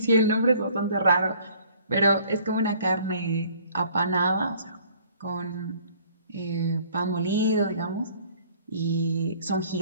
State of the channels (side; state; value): both; inverted; correlation -0.56